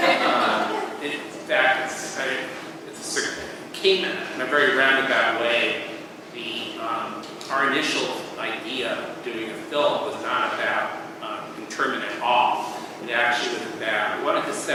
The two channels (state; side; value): identical; both; correlation 1.00